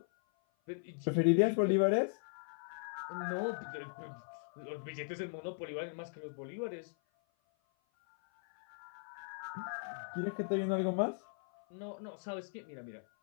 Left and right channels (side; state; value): right; silent; 52 dB below the other